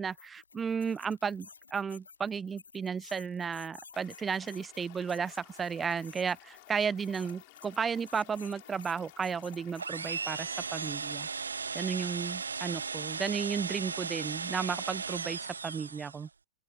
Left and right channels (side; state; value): left; quieter; 5.6 dB